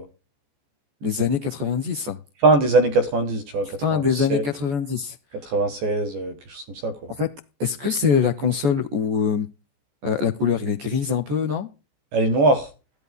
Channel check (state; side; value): late; left; 14 ms